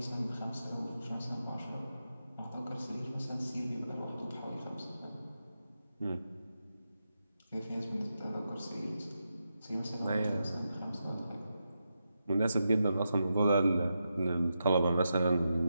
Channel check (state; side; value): inverted; both; correlation -0.87